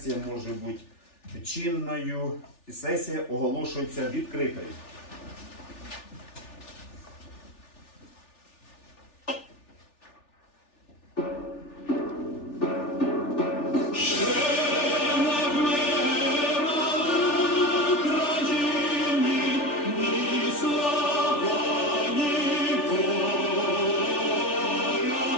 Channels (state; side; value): late; right; 3.4 ms